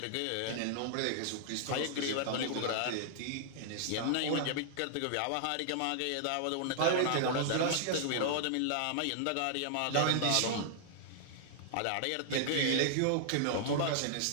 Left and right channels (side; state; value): both; different; correlation -0.01